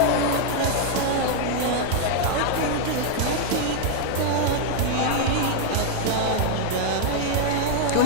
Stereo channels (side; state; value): both; different; correlation 0.00